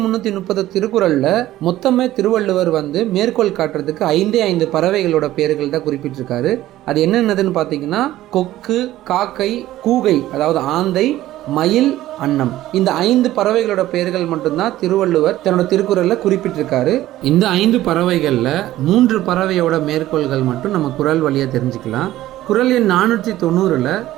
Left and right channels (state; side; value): quieter; left; 14.8 dB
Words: திருக்குறளில் மொத்தமே திருவள்ளுவர் மேற்கோள் காட்டுறதுக்கு 5 பறவைகளோட பேர்கள் தான் குறிப்பிட்டிருக்காரு. அது என்னென்னதுன்னு பார்த்தீங்கன்னா கொக்கு, காக்கை, கூகை அதாவது ஆந்தை, மயில், அன்னம். இந்த 5 பறவைகளோட பெயர்கள் மட்டும்தான் திருவள்ளுவர் தன்னோட திருக்குறளில் குறிப்பிட்டிருக்காரு. இந்த 5 பறவைகளில் 3 பறவையோட மேற்கோள்கள் மட்டும் நம்ம குறள் வழியாக தெரிஞ்சுக்கலாம். குறள் எண் 490